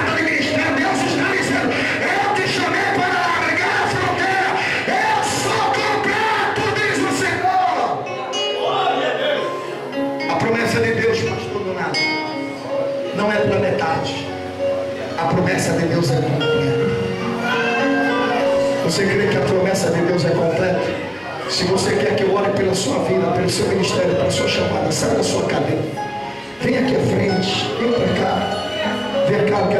de ministério? Deus está dizendo: eu te chamei para largar a fronteira, eu sou completo, diz o Senhor. A promessa de Deus, pastor Donato, não é pela metade. A promessa de Deus é completa. Você crê que a promessa de Deus é completa? Se você quer que eu ore pela sua vida, pelo seu ministério, pela sua chamada, sai da sua cadeira, vem aqui à frente, vem para cá. Vem cá, eu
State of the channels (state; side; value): identical; both; correlation 1.00